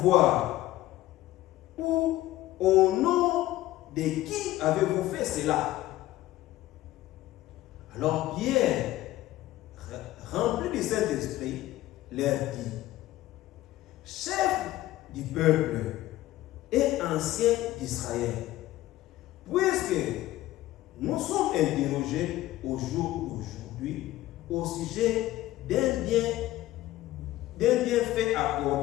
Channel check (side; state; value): right; quieter; 15.6 dB